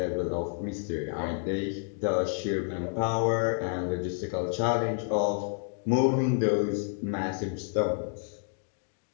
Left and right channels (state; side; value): silent; right; 58 dB below the other